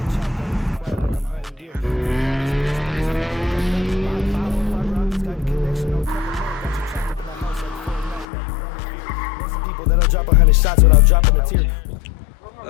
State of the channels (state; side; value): drops out; right; at 8.2 s